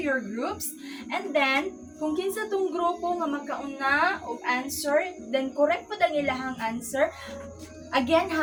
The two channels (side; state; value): both; identical; correlation 1.00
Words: your groups, and then kung kinsa tong grupo nga makauna og answer, then correct po ang ilahang answer. Again